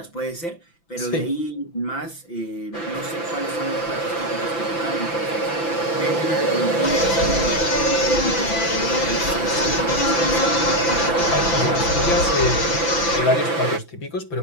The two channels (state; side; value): late; right; 5.9 ms